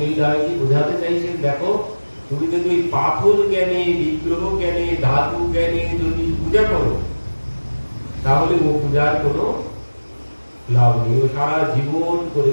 বোঝাতে চাইছেন, দেখো তুমি যদি ওই পাথর জ্ঞানে, বিগ্রহ জ্ঞানে, ধাতু জ্ঞানে যদি পূজা করো তাহলে ও পূজার কোনো লাভ নেই, ও সারা জীবন করে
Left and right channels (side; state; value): both; inverted; correlation -1.00